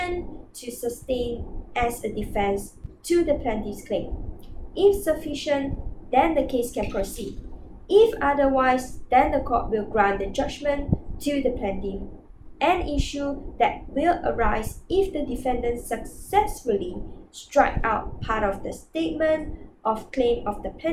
to sustain as a defense to the plaintiff's claim. If sufficient, then the case can proceed. If otherwise, then the court will grant the judgment to the plaintiff. An issue that will arise if the defendant successfully strike out part of the statement of claim of the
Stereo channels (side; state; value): both; identical; correlation 1.00